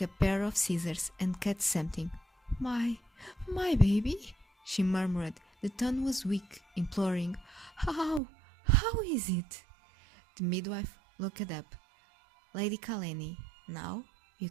a pair of scissors and cut something. My baby," she murmured. The tone was weak, imploring. How is it?" The midwife looked up. "Lady Kaleni, now you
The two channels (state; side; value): drops out; left; at 8.2 s